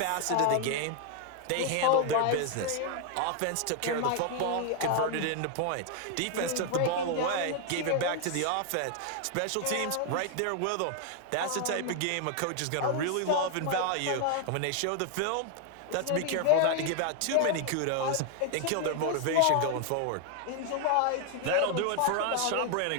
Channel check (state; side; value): different; both; correlation 0.00